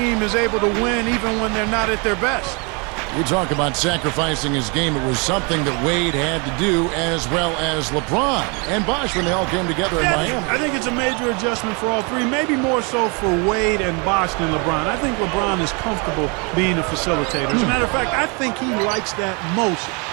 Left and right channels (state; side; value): quieter; left; 32.4 dB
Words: is able to win even when they're not at their best. You talk about sacrificing his game. It was something that Wade had to do, as well as LeBron and Bosh when they all came together in Miami. I think it's a major adjustment for all three, maybe more so for Wade and Bosh than LeBron. I think LeBron is comfortable being a facilitator. As a matter of fact, I think he likes that most